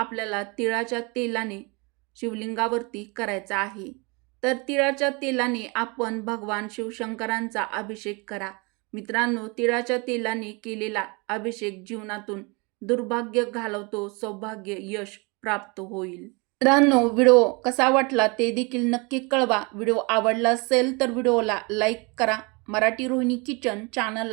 तिळाच्या तेलाने शिवलिंगावरती करायचा आहे. तर तिळाच्या तेलाने आपण भगवान शिवशंकरांचा अभिषेक करा. मित्रांनो, तिळाच्या तेलाने केलेला अभिषेक जीवनातून दुर्भाग्य घालवतो, सौभाग्य, यश प्राप्त होईल. मित्रांनो, व्हिडिओ कसा वाटला ते देखील नक्की कळवा. व्हिडिओ आवडला असेल तर व्हिडिओला लाईक करा. मराठी रोहिणी किचन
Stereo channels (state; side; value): quieter; left; 29.1 dB